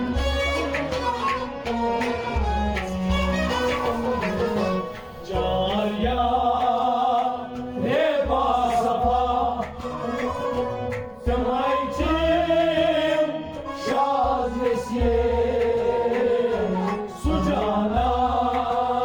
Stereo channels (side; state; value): both; identical; correlation 1.00